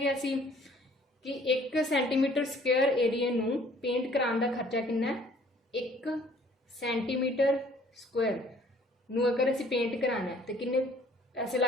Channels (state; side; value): normal; both; correlation 0.56